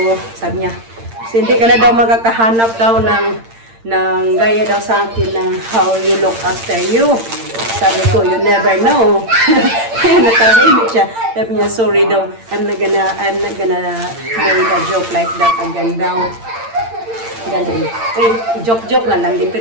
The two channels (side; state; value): left; late; 8.8 ms